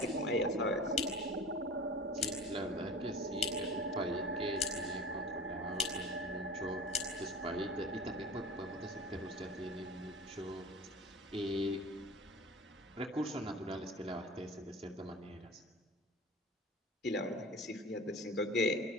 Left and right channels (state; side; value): normal; both; correlation 0.38